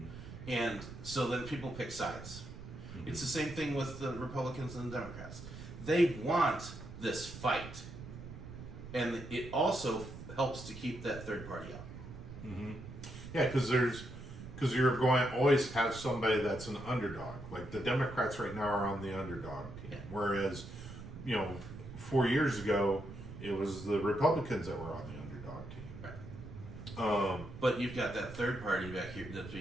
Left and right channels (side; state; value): right; noise; rumble, 12 dB below the sound